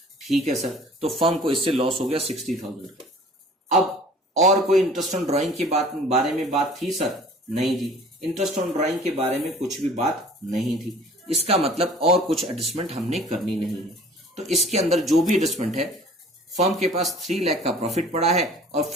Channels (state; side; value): normal; both; correlation 0.48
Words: ठीक है सर, तो फर्म को इससे लॉस हो गया 60,000 का। अब और कोई इंटरेस्ट ऑन ड्राइंग के बारे में बात थी सर? नहीं जी, इंटरेस्ट ऑन ड्राइंग के बारे में कुछ भी बात नहीं थी। इसका मतलब और कुछ एडजस्टमेंट हमने करनी नहीं है। तो इसके अंदर जो भी एडजस्टमेंट है, फर्म के पास 3 लाख का प्रॉफिट पड़ा है और